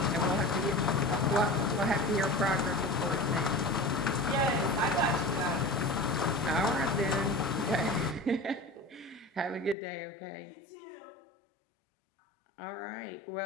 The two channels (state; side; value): drops out; right; at 9.8 s